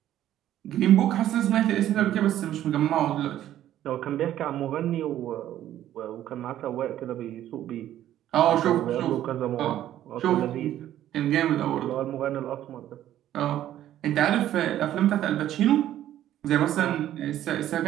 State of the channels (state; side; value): quieter; left; 12.3 dB